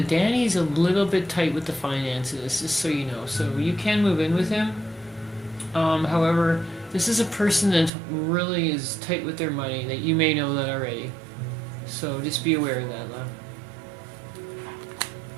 Danny's a little bit tight with the finances, just so you know. So you can move in with him. However, this is a person that really is tight with their money, that you may know that already. So just be aware of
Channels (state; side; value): drops out; left; at 7.9 s